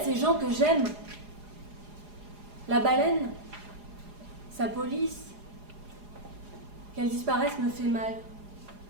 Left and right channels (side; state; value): left; late; 4.9 ms